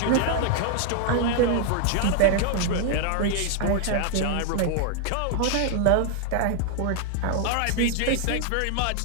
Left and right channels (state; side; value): different; both; correlation 0.00